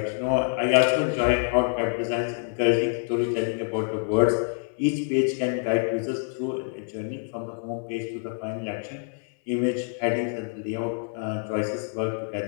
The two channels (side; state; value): right; silent; 61 dB below the other